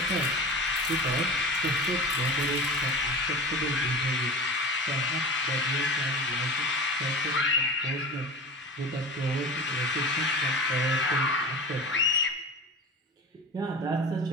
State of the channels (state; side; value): normal; both; correlation 0.32